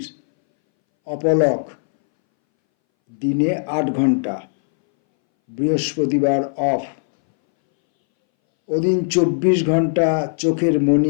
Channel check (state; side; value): silent; right; 63 dB below the other